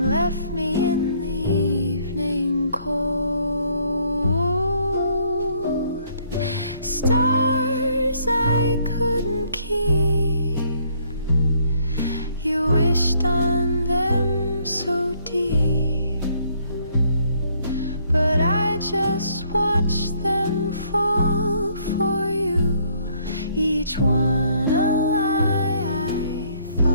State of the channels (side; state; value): both; inverted; correlation -0.66